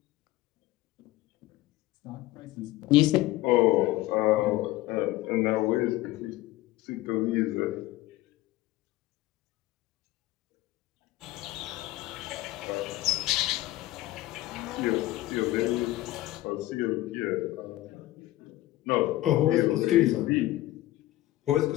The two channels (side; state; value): right; quieter; 16.8 dB